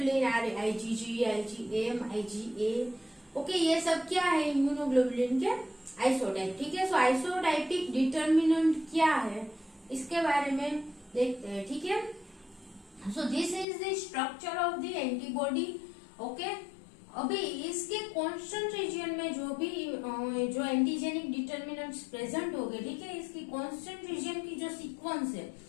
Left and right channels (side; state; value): right; drops out; at 13.7 s